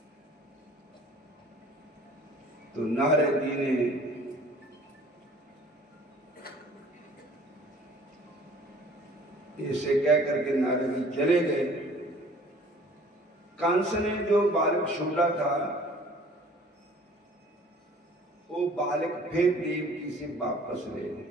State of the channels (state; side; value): normal; both; correlation 0.51